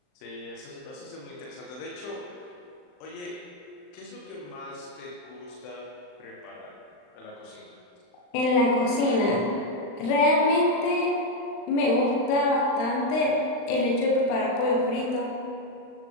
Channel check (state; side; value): late; right; 39 ms